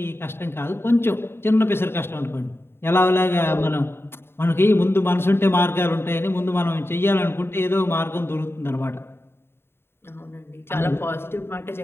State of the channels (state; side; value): late; right; 0.11 ms